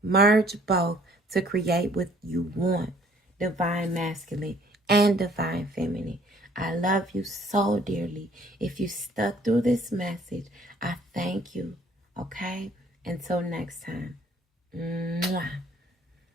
Merge both to create what you want. Divine masculine and divine feminine. I love you so dearly. If you stuck through this message, I thank you. Okay? Until next time. Mwah.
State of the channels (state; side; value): normal; both; correlation 0.59